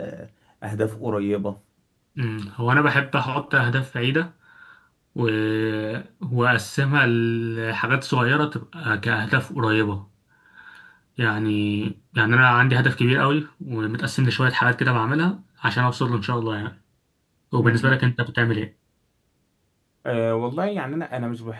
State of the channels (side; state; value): both; identical; correlation 1.00